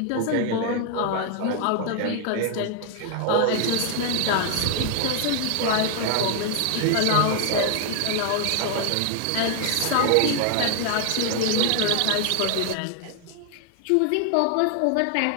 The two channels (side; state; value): both; different; correlation 0.00